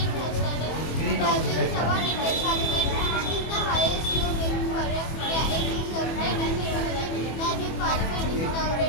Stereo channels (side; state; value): right; late; 25 ms